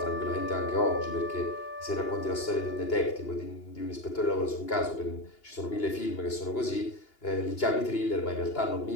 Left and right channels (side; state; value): right; late; 2.8 ms